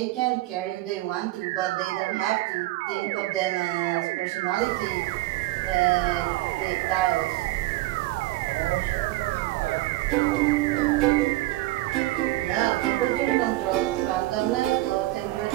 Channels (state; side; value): quieter; left; 18.0 dB